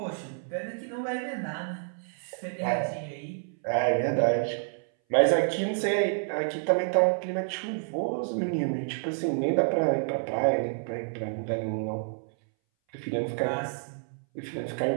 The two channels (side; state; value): left; silent; 59 dB below the other